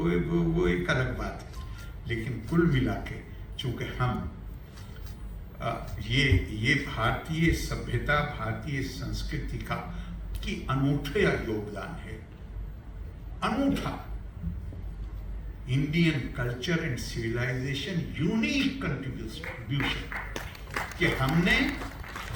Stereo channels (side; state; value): both; identical; correlation 1.00